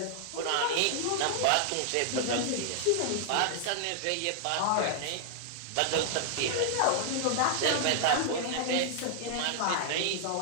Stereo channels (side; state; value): both; different; correlation -0.01